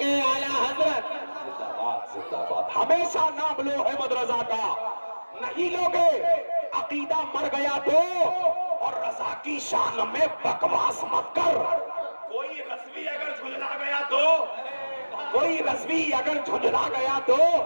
اعلی حضرت. زندہ باد, زندہ باد. ہمیشہ نام لو احمد رضا کا. نہیں لوگے عقیدہ مر گیا تو, اور رضا کی شان میں بکواس مت کر. کوئی رضوی اگر جھنجلا گیا تو, کوئی رضوی اگر جھنجلا گیا تو.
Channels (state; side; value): inverted; both; correlation -1.00